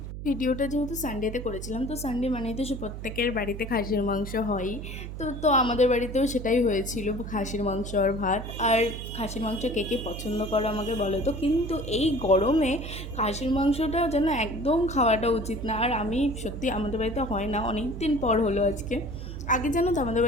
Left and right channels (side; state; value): right; noise; hum, 8 dB below the sound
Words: ভিডিওটা যেহেতু সানডেতে করেছিলাম, তো সানডে মানেই তো প্রত্যেকের বাড়িতে খাসির মাংস হয়ই। তো আমাদের বাড়িতেও সেটাই হয়েছিল, খাসির মাংস আর ভাত। আর খাসির মাংস কে কে পছন্দ করো আমাকে বলো তো। কিন্তু এই গরমে খাসির মাংসটা যেন একদম খাওয়াটা উচিত না। আর আমি সত্যি, আমাদের বাড়িতে হয় না, অনেক দিন পর হলো আজকে। আগে জানো তো আমাদের